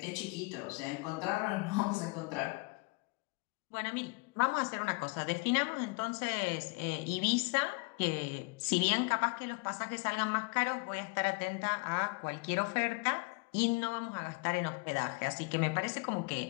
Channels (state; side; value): quieter; right; 28.5 dB